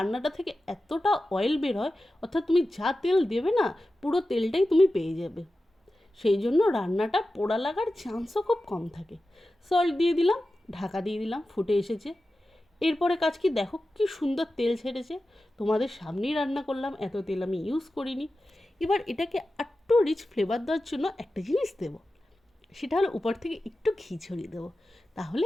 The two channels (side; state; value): both; normal; correlation 0.93